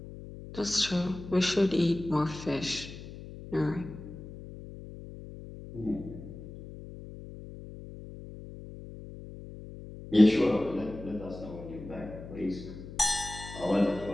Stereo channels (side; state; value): left; noise; hum, 13 dB below the sound